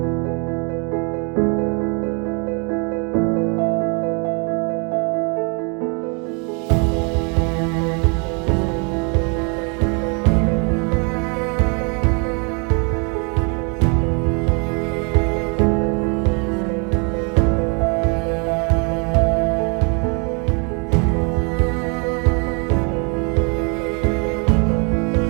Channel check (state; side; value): quieter; left; 35.3 dB